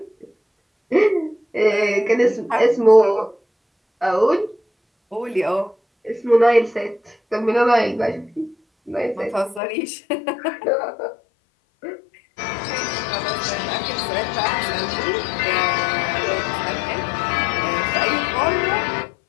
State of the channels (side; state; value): right; drops out; at 9.6 s